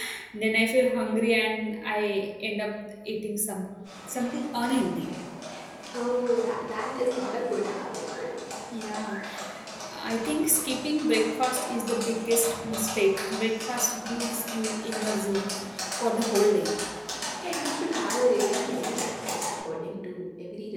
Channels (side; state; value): both; identical; correlation 1.00